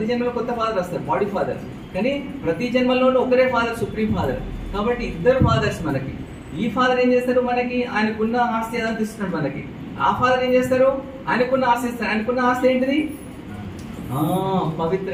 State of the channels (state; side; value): identical; both; correlation 1.00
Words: జన్మలో కొత్త ఫాదర్ వస్తారు, బాడీ ఫాదర్. కానీ ప్రతి జన్మలోనూ ఒకరే ఫాదర్, సుప్రీం ఫాదర్. కాబట్టి ఇద్దరు ఫాదర్స్ మనకి. ఈ ఫాదర్ ఏం చేస్తారు? మనకి ఆయనకున్న ఆస్తి ఏదంతా ఇస్తున్నాడు మనకి. ఆ ఫాదర్ ఏం చేస్తారు? ఆయనకున్న ఆస్తి ఇస్తారు. ఆయనకున్న ఆస్తి ఏంటిది?